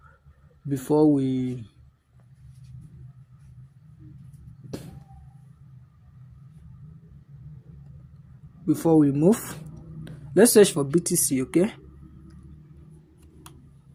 before we move. Let's search for BTC. Okay,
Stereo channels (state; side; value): identical; both; correlation 1.00